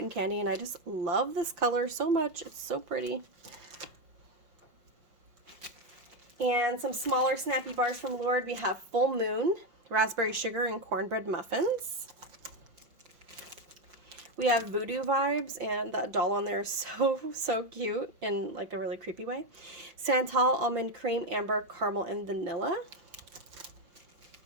Candy. And I just love this color so much. It's so pretty. And some smaller snappy bars from Lurid. We have Full Moon, Raspberry Sugar, and Cornbread Muffins. We have Voodoo Vibes, and that doll on there is so cute in like a really creepy way. Santal, Almond Cream, Amber, Caramel, and Vanilla.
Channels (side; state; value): left; late; 5.6 ms